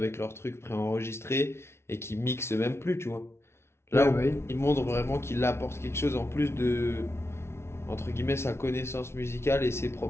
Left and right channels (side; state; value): right; late; 0.12 ms